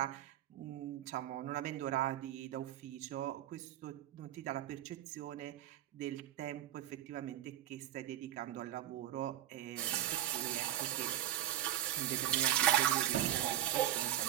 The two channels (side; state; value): left; quieter; 12.7 dB